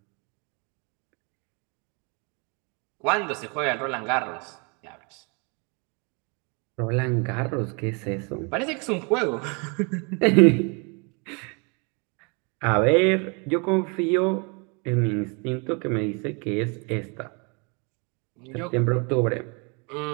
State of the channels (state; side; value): quieter; left; 33.2 dB